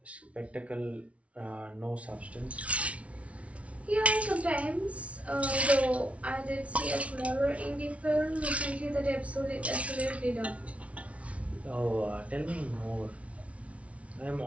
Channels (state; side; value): late; left; 0.064 ms